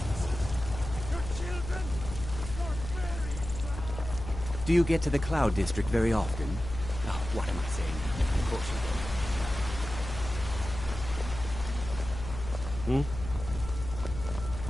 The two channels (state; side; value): noise; left; hum, 8 dB below the sound